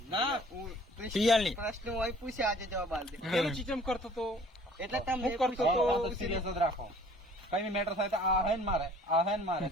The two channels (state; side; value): normal; both; correlation 0.53